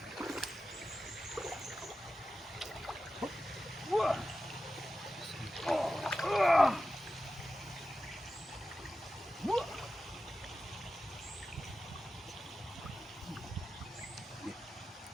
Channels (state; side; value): normal; both; correlation 0.92